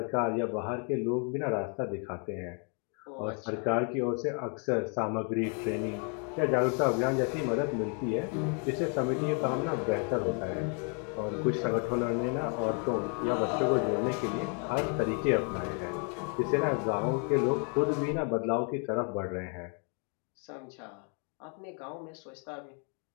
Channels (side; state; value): right; quieter; 39.4 dB